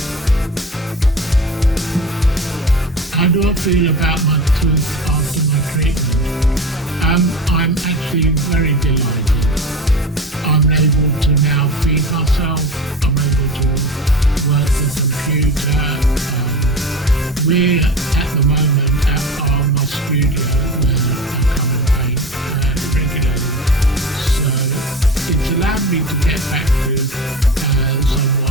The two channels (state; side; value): normal; both; correlation 0.30